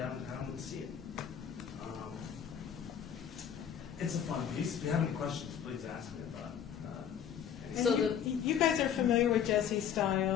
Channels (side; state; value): right; quieter; 8.7 dB